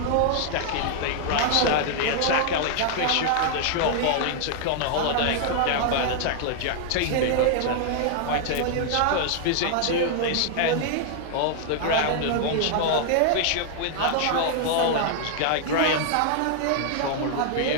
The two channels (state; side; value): different; both; correlation 0.00